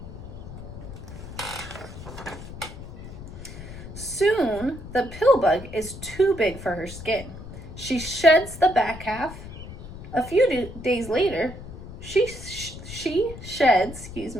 Soon, the pill bug is too big for her skin. She sheds the back half. A few days later, she sheds,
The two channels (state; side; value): noise; left; rumble, 12 dB below the sound